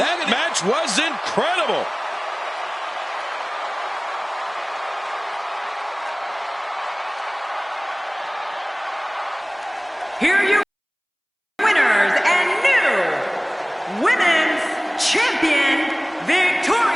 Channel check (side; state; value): both; identical; correlation 1.00